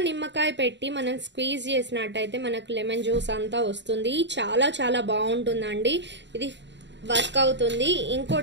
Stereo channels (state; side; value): late; left; 0.52 ms